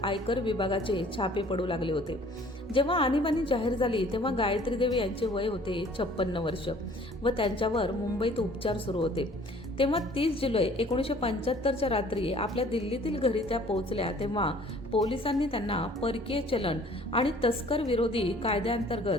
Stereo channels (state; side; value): normal; both; correlation 0.53